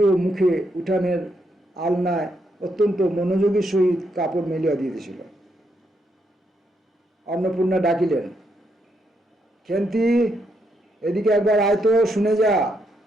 মুখে উঠানের আলনায় অত্যন্ত মনোযোগের সহিত কাপড় মেলিয়া দিতেছিল। অন্নপূর্ণা ডাকিলেন, খেন্তি, এদিকে একবার আয় তো, শুনে যা।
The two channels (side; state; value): both; normal; correlation 0.78